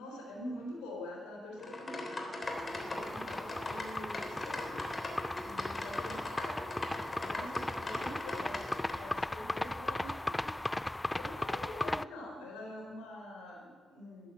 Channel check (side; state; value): both; normal; correlation 0.93